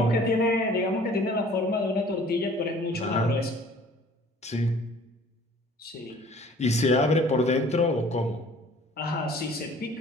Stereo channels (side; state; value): both; normal; correlation 0.52